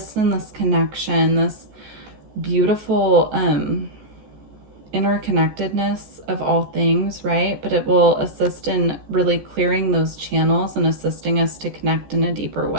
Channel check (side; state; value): left; late; 14 ms